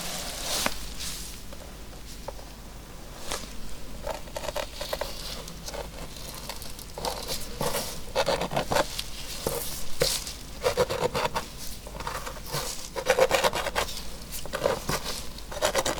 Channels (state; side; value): identical; both; correlation 1.00